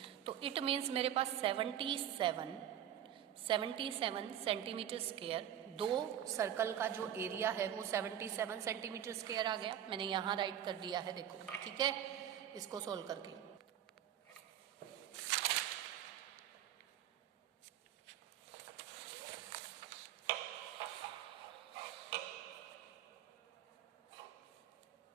तो इट मीन्स मेरे पास 77 सेंटीमीटर स्क्वायर, दो सर्कल का जो एरिया है वो 77 सेंटीमीटर स्क्वायर आ गया। मैंने यहाँ राइट कर दिया है, देखो ठीक है, इसको सोल्व करके।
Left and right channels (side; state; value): left; quieter; 10.6 dB